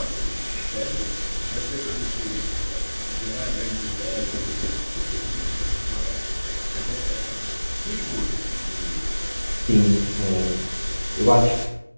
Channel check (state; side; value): inverted; both; correlation -1.00